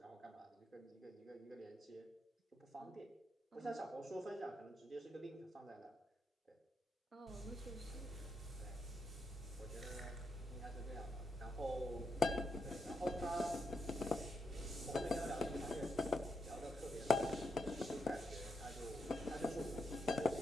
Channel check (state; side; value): normal; both; correlation 0.81